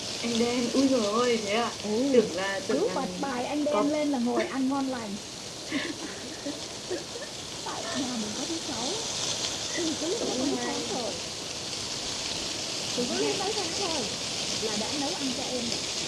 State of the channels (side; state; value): both; identical; correlation 1.00